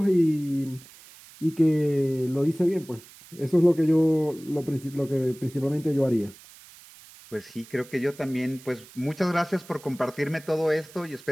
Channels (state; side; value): noise; right; hiss, 21 dB below the sound